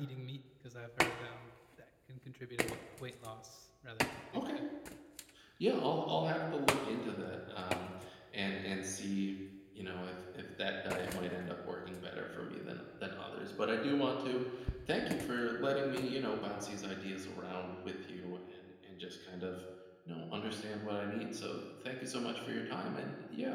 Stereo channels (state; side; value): identical; both; correlation 1.00